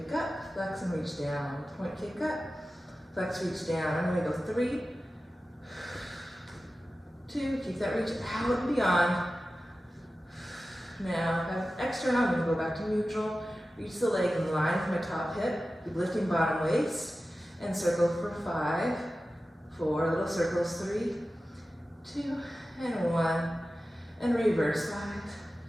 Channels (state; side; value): normal; both; correlation 0.95